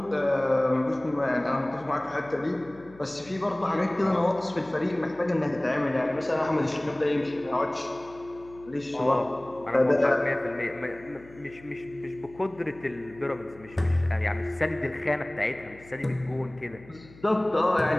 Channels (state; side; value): noise; left; hum, 23 dB below the sound